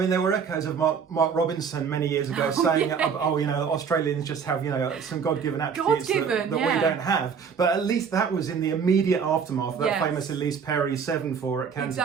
there were echoes of Mark Robinson many years ago saying, Australians just have, some God-given attributes that we don't have. But at least that was in the immediate aftermath of that famous Elise Perry 7-4 at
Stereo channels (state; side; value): quieter; left; 6.5 dB